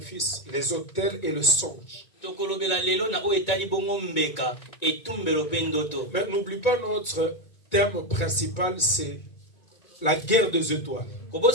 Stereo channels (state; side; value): late; right; 1.9 ms